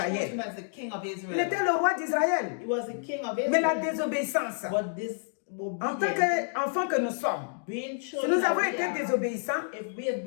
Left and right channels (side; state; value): right; silent; digital silence